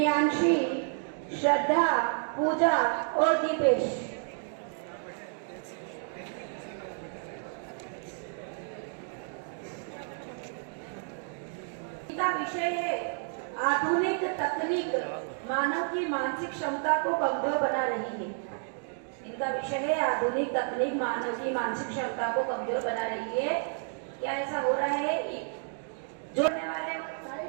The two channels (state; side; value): silent; left; 57 dB below the other